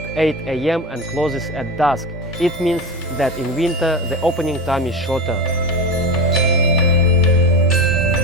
8 AM and closes at dusk. It means that in winter the opening time is shorter.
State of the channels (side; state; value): both; normal; correlation 0.23